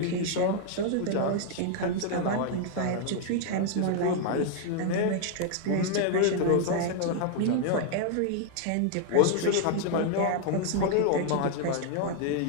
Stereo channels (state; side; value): different; both; correlation 0.00